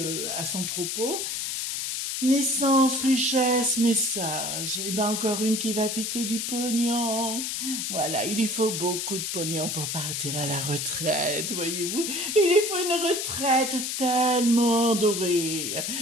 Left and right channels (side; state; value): left; noise; hiss, 2 dB below the sound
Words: à son propos. Naissance, richesse, message. Et ben encore une qui va piquer du pognon. Voilà, il lui faut beaucoup de pognon pour partir à la retraite, voyez-vous. Il lui faut une retraite tellement dorée.